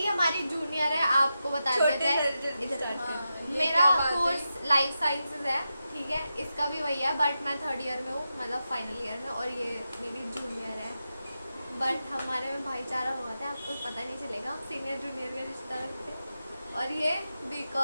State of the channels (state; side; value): inverted; both; correlation -0.89